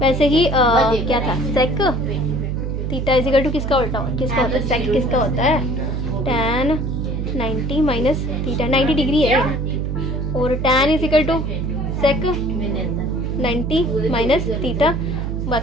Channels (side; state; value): right; noise; hum, 2 dB below the sound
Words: ही क्या था? Sec theta is equal to किसका उल्टा किसका होता है? सेक किसका होता है? tan 90 माइनस थीटा, 90 डिग्री है। और tan is equal to sec 90 minus theta.